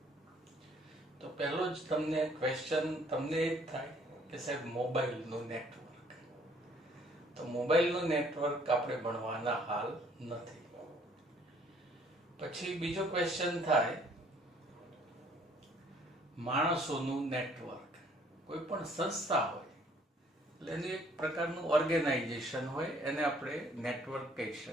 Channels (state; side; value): normal; both; correlation 0.60